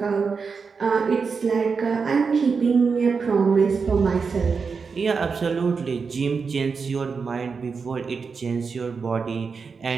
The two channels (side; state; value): left; quieter; 5.2 dB